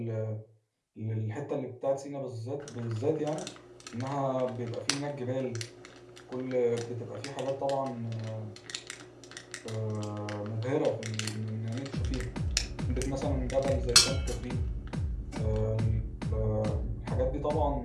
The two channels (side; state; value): both; identical; correlation 1.00